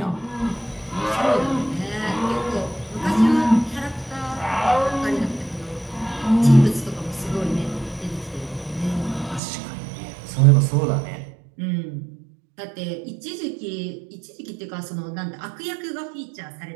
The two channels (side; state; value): left; drops out; at 9.4 s